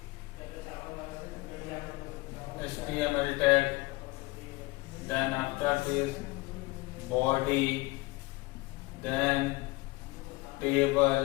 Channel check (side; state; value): right; quieter; 22.5 dB